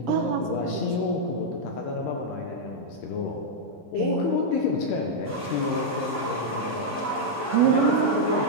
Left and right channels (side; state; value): both; normal; correlation -0.04